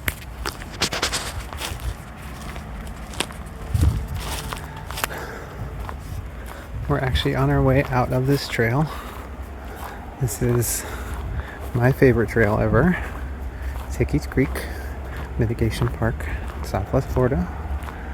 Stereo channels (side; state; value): both; identical; correlation 1.00